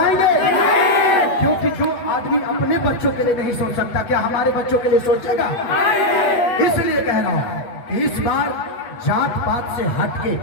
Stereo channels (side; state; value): right; late; 8.2 ms